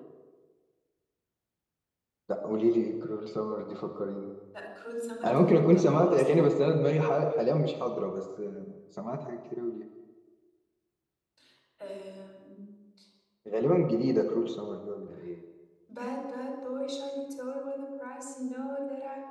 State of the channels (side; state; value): both; identical; correlation 1.00